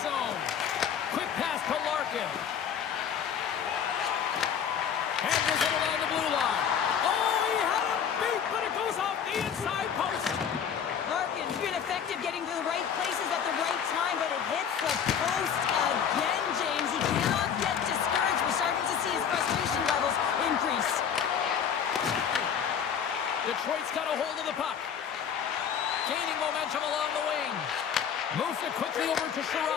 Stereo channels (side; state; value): right; quieter; 7.9 dB